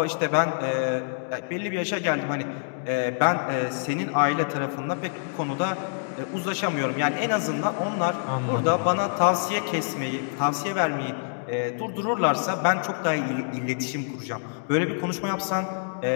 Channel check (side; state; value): right; silent; digital silence